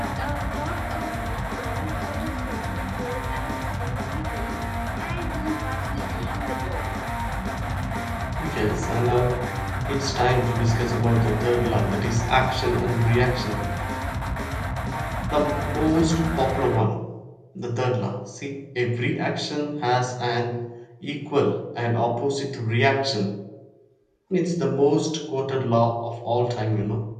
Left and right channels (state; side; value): identical; both; correlation 1.00